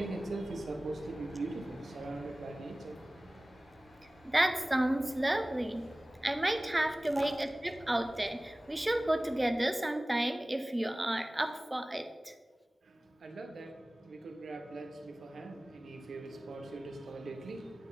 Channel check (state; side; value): normal; both; correlation 0.98